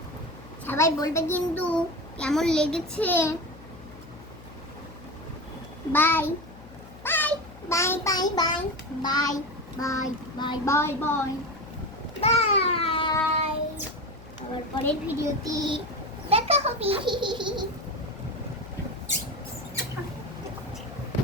সবাই বলবে কিন্তু কেমন লেগেছে। Bye bye bye bye bye bye bye bye bye bye bye. আবার পরের ভিডিওতে দেখা হবে।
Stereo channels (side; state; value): left; noise; hum, 19 dB below the sound